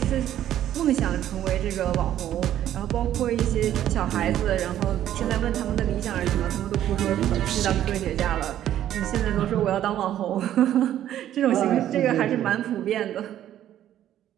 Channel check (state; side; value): quieter; left; 11.7 dB